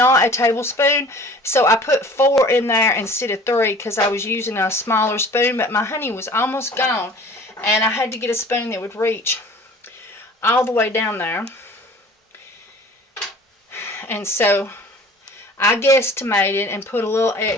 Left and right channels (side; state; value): both; normal; correlation 0.46